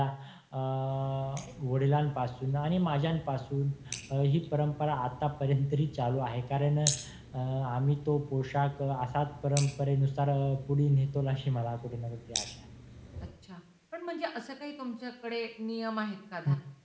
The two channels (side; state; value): both; identical; correlation 1.00